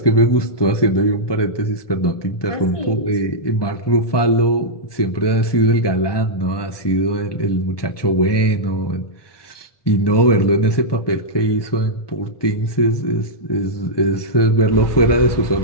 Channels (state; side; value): late; right; 1.2 ms